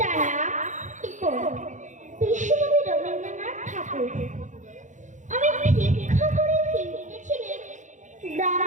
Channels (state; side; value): late; left; 0.36 ms